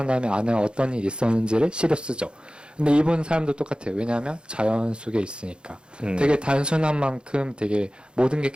다음에 안에 어떤 일이 있었는지를 시로 쓰죠. 근데 이분 사람도 똑같아요. 왜냐하면 자연 속에 있으니까. 되게 단순한 만큼 되게 모든 게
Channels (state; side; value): late; left; 0.052 ms